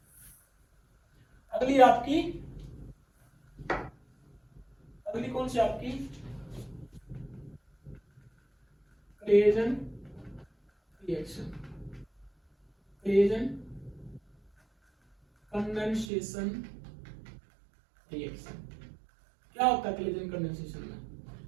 अगली आपकी, अगली कौन सी आपकी, क्रेजन रिएक्शन, क्रेजन कंडेंसेशन रिएक्शन। क्या होता है क्लेजन कंडेंसेशन में,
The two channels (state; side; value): drops out; left; at 16.1 s